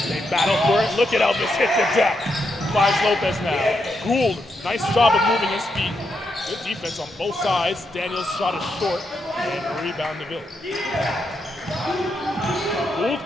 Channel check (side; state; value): both; normal; correlation 0.82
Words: They battle for it. Look at Elvis hit the deck. Finds Lopez now. Gould, nice job of moving his feet. Good defense on both sides. Daniels' shot is short, and rebound DeVille. Gould's